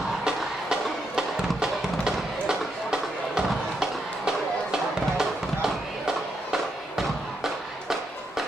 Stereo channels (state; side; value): normal; both; correlation 0.80